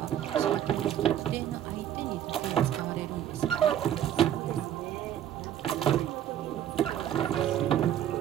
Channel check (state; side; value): quieter; left; 10.9 dB